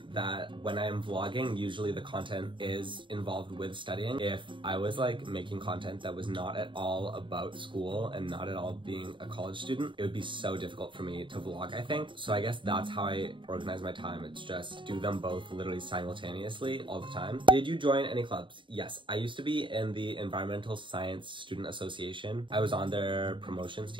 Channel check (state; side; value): late; left; 0.24 ms